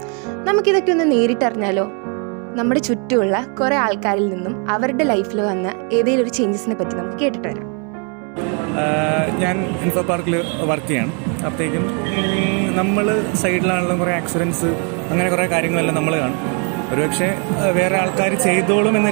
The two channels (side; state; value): left; quieter; 37.9 dB